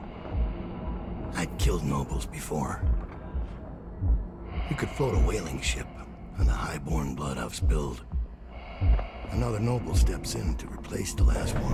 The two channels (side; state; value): both; identical; correlation 1.00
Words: I'd killed nobles before. You could float a whaling ship, and the high-born blood I've spilled. Another noble steps in to replace the last